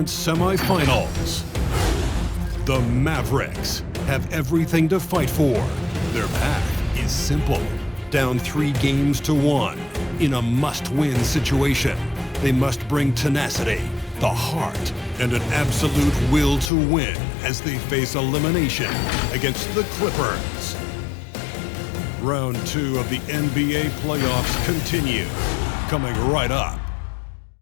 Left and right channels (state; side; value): drops out; right; at 16.7 s